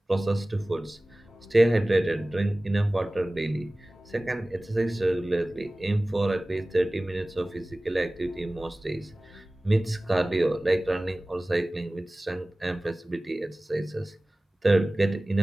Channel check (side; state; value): both; normal; correlation 0.98